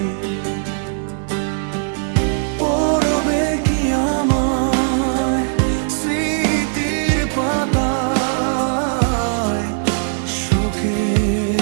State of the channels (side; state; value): left; silent; digital silence